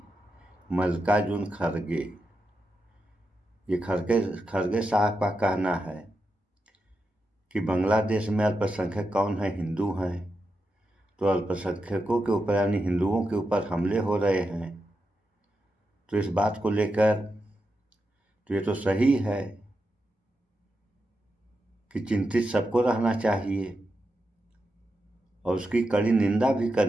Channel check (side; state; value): both; normal; correlation 0.87